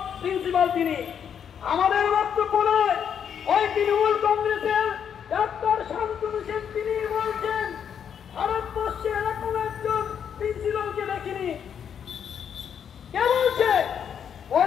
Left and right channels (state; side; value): quieter; right; 8.1 dB